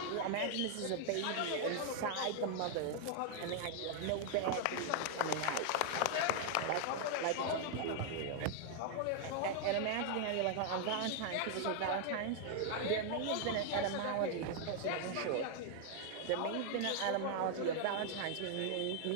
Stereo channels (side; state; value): both; different; correlation 0.00